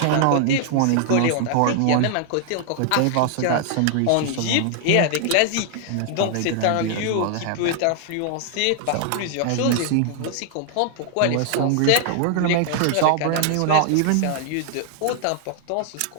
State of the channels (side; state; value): both; different; correlation 0.00